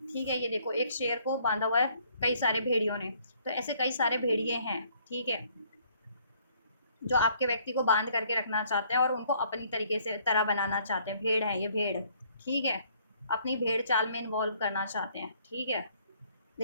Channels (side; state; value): both; inverted; correlation -0.63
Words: है। ये देखो एक शेर को बांधा हुआ है कई सारे भेड़ियों ने, तो ऐसे कई सारे भेड़िए हैं, ठीक है, जो आपके व्यक्ति को बांध करके रखना चाहते हैं और उनको अपनी तरीके से तरह बनाना चाहते हैं। भेड़ है ये, भेड़, ठीक है, अपनी भेड़ चाल में इन्वॉल्व करना चाहते हैं, ठीक है।